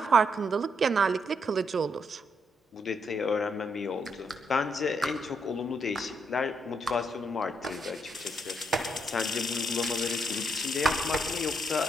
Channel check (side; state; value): both; normal; correlation 0.77